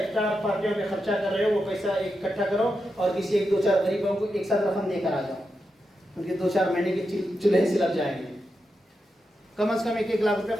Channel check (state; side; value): normal; both; correlation 0.87